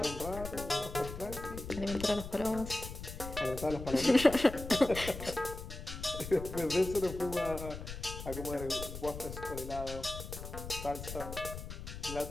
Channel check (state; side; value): noise; left; rumble, 9 dB below the sound